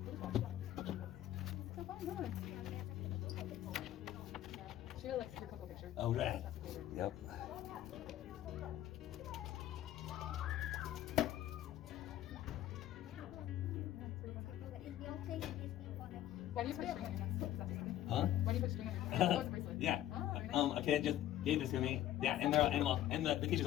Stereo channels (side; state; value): right; quieter; 13.0 dB